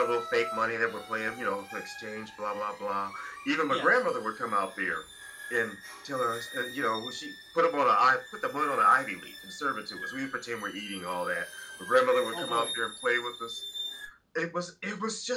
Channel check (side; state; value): both; identical; correlation 1.00